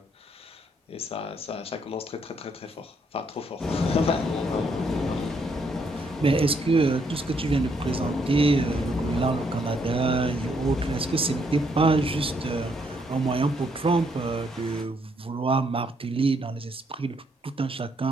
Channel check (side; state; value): both; normal; correlation 0.73